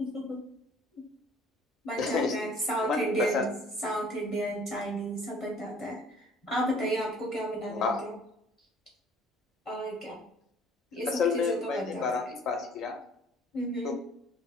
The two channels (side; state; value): both; normal; correlation 0.54